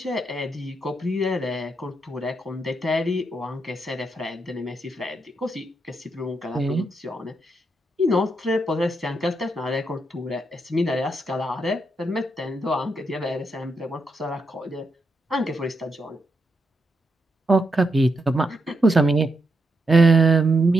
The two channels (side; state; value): both; normal; correlation 0.81